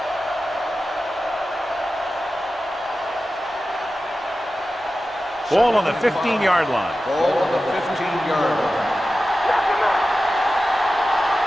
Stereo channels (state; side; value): normal; both; correlation 0.94